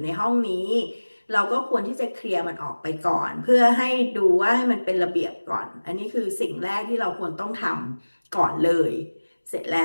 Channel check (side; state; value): both; inverted; correlation -1.00